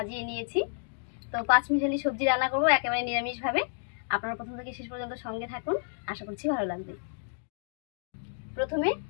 নিয়েছি। তো 5 মিশালি সবজি রান্না করবো একেবারে নিরামিষভাবে। আপনারা প্রথম থেকে শেষ পর্যন্ত সঙ্গে থাকুন, আশা করছি ভালো লাগবে। প্রথমে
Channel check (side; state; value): right; silent; digital silence